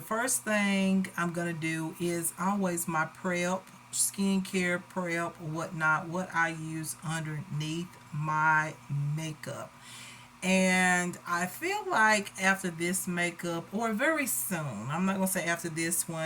first thing I'm going to do is always my prep, skincare prep, whatnot, what I use underneath my makeup. And I feel like after this makeup, or very soon, I'm not going to say after this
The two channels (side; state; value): both; identical; correlation 1.00